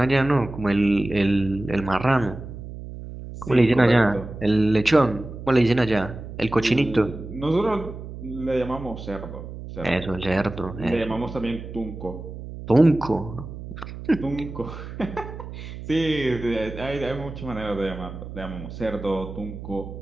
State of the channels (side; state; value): right; noise; hum, 11 dB below the sound